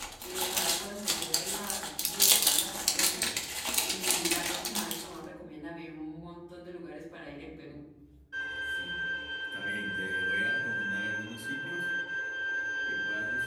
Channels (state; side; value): identical; both; correlation 1.00